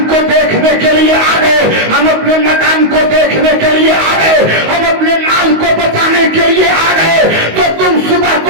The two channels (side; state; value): left; late; 19 ms